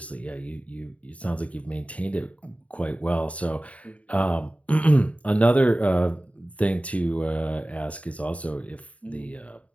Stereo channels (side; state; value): right; late; 0.066 ms